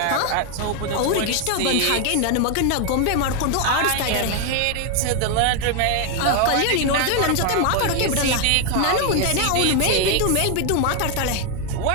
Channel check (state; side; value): different; both; correlation 0.01